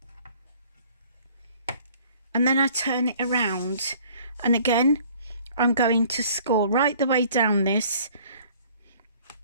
and then I turn it around, and again I'm going to score right the way down this.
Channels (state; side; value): inverted; both; correlation -0.55